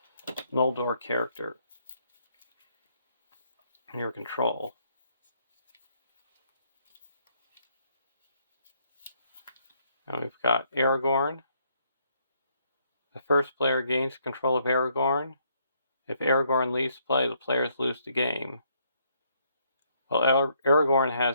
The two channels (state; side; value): inverted; both; correlation -0.70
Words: Noldor character in your control. And we've got Aragorn. The first player gains control of Aragorn. If Aragorn leaves play, the players lose the game. While Aragorn